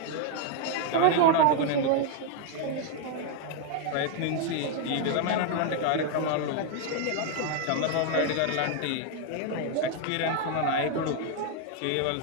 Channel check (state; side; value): different; both; correlation 0.00